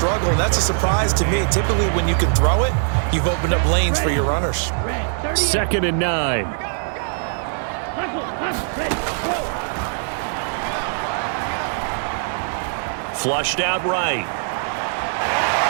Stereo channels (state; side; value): silent; left; digital silence